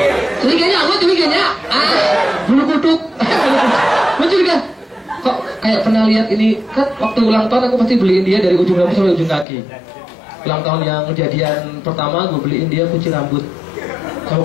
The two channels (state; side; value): drops out; right; at 9.5 s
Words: bulu kuduk. Gue curiga kok kayak pernah lihat ini, kan waktu ulang tahun aku pasti beliin dia dari ujung rambut sampai ujung kaki. Ulang tahun yang kejadian pertama gue beliin dia kucing rambut sama